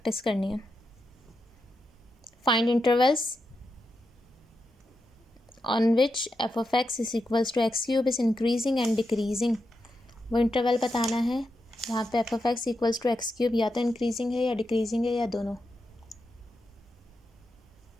करनी है। Find intervals on which f of x is equals to x cube is increasing and decreasing. वो इंटरवल बताना है वहाँ पे f of x equals to x cube या तो इंक्रीजिंग है या डिक्रीजिंग है या दोनों।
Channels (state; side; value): normal; both; correlation 0.86